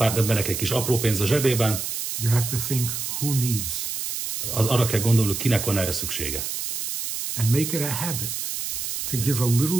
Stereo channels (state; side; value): noise; right; hiss, 4 dB below the sound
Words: embernek egy kis apró pénz a zsebében, you have to think who needs. Arra kell gondolni, kinek van erre szüksége. And make it a habit to give a